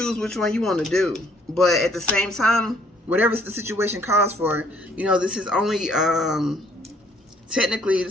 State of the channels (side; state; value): both; normal; correlation 0.63